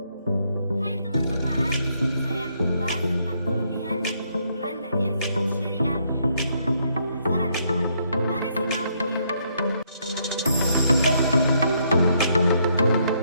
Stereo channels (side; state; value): both; inverted; correlation -0.73